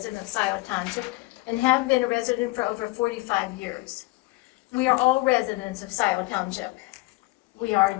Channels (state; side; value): quieter; right; 22.9 dB